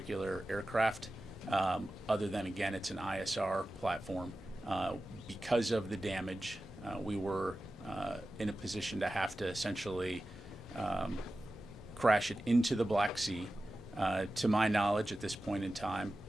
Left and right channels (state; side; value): normal; both; correlation 0.94